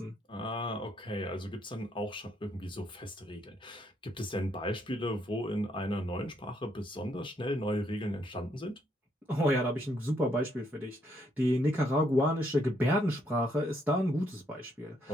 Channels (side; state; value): both; normal; correlation 0.73